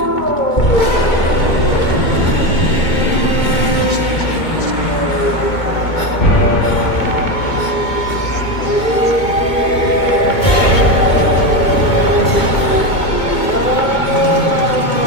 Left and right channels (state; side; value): late; right; 2.2 ms